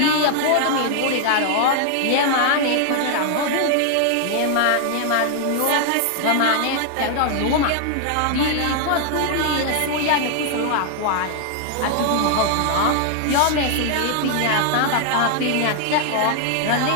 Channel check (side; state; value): both; different; correlation 0.00